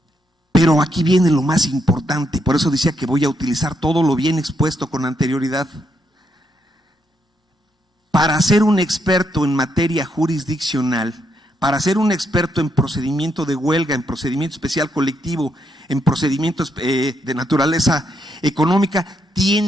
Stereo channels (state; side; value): normal; both; correlation 0.78